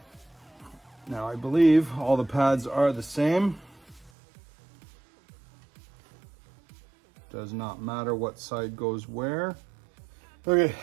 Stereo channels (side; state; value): left; drops out; at 4.1 s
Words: Now I believe all the pads are the same. Does not matter what side goes where. Okay,